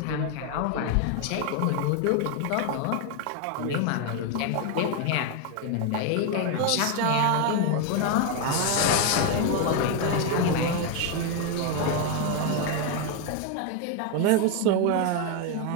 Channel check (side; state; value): both; different; correlation 0.01